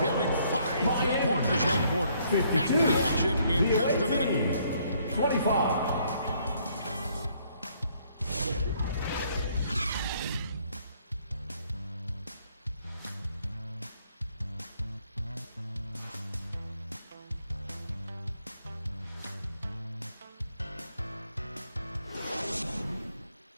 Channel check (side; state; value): both; inverted; correlation -0.67